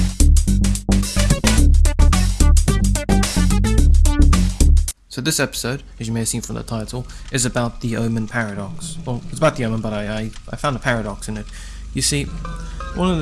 So this episode, as you may have seen from the title, is about the Omen paradox. Well, it's about the Omen, but I found a paradox in it. You see, one of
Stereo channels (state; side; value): identical; both; correlation 1.00